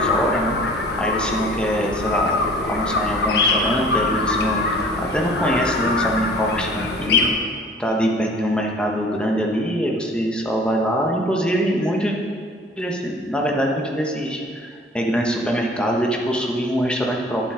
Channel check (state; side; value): normal; both; correlation 0.49